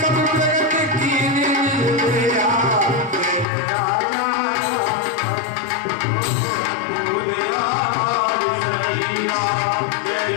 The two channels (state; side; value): drops out; right; at 3.5 s